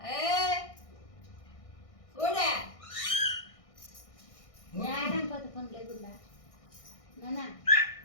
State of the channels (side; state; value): right; late; 1.6 ms